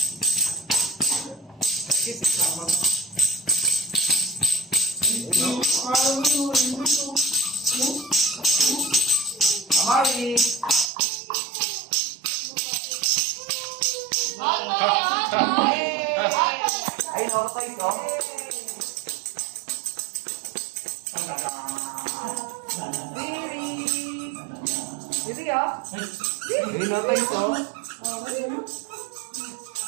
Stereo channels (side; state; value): left; drops out; at 10.9 s